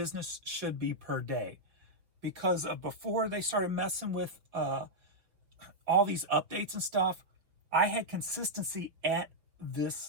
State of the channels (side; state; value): left; late; 5.7 ms